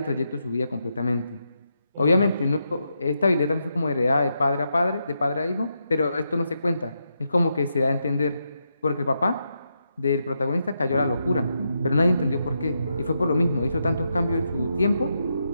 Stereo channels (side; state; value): both; inverted; correlation -0.83